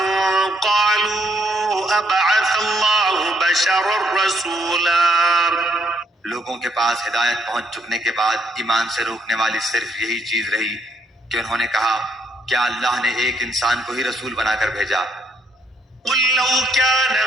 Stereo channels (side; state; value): both; normal; correlation 0.72